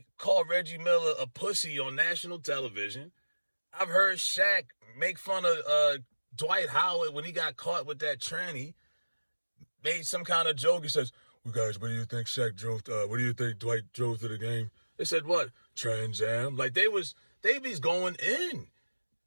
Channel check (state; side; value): inverted; both; correlation -1.00